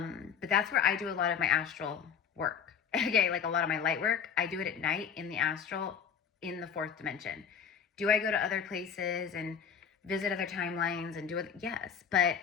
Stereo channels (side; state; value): right; quieter; 7.3 dB